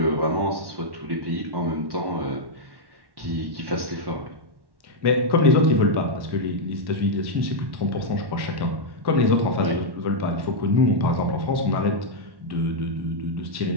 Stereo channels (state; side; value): late; left; 1.1 ms